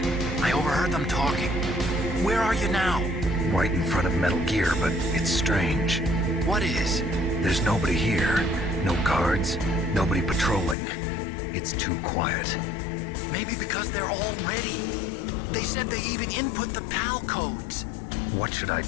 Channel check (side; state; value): right; drops out; at 10.8 s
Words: I overheard them talking. Where are you now? Right in front of Metal Gear, but it's strange. What is? There's nobody here. No guards. Nobody patrolling. It's too quiet. Maybe because they're all ready. They said they even input the PAL codes. What should I